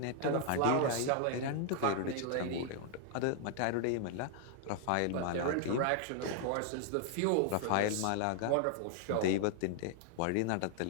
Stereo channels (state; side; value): different; both; correlation 0.00